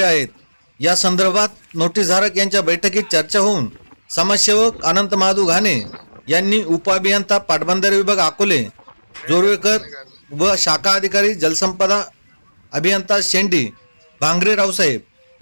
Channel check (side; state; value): both; inverted; correlation -1.00